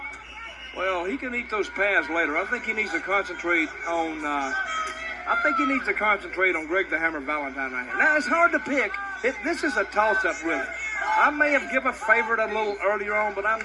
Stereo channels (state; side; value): identical; both; correlation 1.00